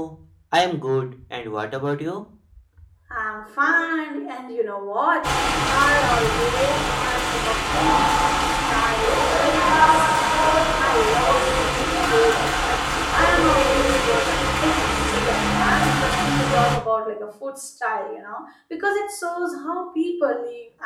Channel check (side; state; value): both; identical; correlation 1.00